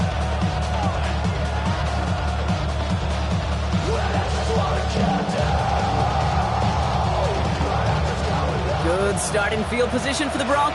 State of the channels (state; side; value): identical; both; correlation 1.00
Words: Good starting field position for the